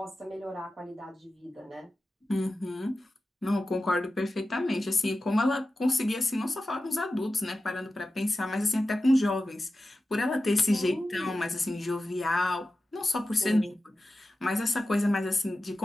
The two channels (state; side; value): normal; both; correlation 0.93